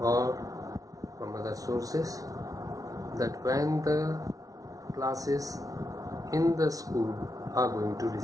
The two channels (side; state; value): left; late; 0.18 ms